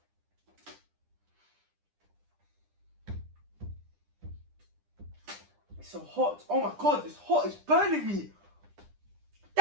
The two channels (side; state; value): left; late; 9.9 ms